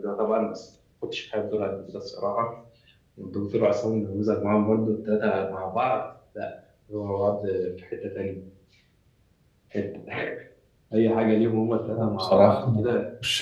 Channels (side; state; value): both; identical; correlation 1.00